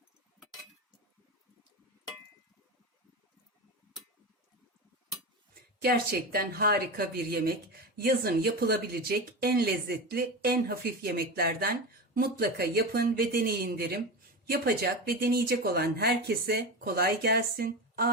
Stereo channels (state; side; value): normal; both; correlation 0.22